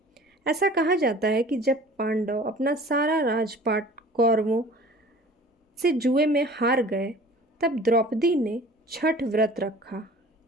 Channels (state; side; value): normal; both; correlation 0.45